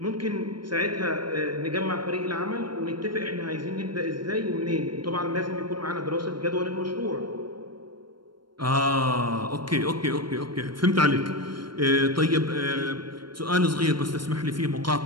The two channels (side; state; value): left; late; 0.72 ms